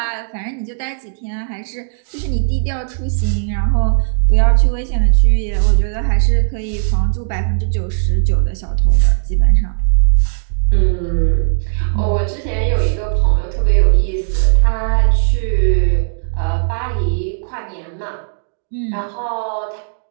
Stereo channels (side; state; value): left; silent; digital silence